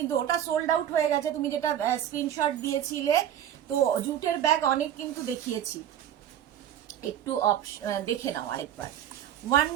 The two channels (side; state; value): left; quieter; 10.6 dB